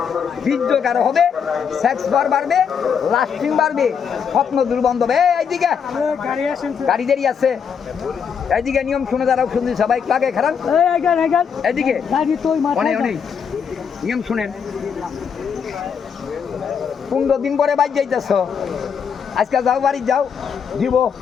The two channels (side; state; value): right; quieter; 7.0 dB